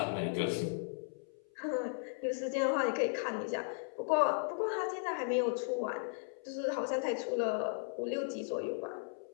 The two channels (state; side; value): silent; right; 54 dB below the other